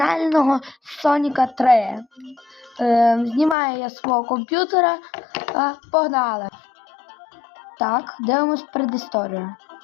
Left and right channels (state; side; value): drops out; right; at 3.6 s